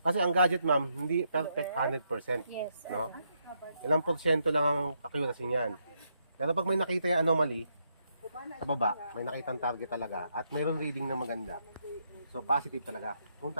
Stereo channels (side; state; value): both; inverted; correlation -0.78